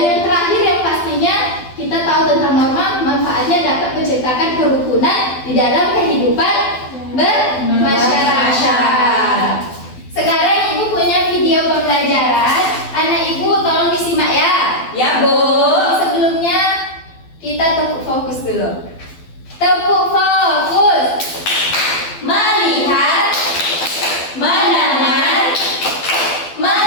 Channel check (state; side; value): late; right; 12 ms